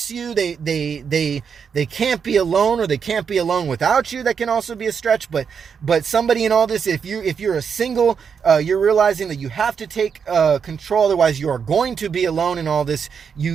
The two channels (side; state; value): left; quieter; 6.6 dB